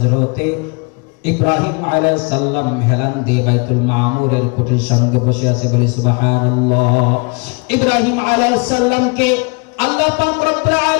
ইব্রাহিম আলাইহিস সালাম হেলান দিয়ে বাইতুল মামুরের খুঁটির সঙ্গে বসে আছে। বলি সুবহানাল্লাহ। ইব্রাহিম আলাইহিস সালামকে আল্লাহ পাক রব্বুল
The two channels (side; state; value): right; quieter; 32.0 dB